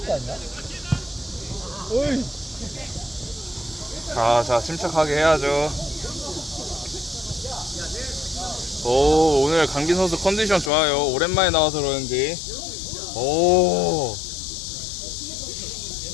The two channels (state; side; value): drops out; right; at 10.7 s